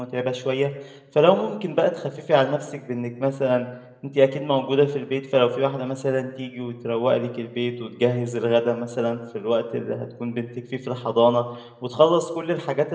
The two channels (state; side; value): identical; both; correlation 1.00